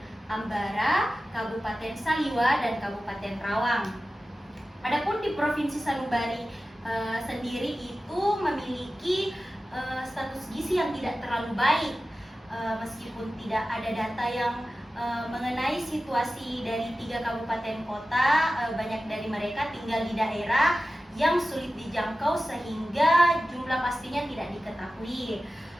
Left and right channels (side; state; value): both; normal; correlation 0.95